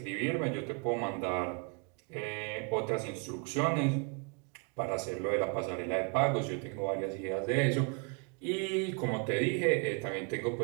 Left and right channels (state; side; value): quieter; left; 35.2 dB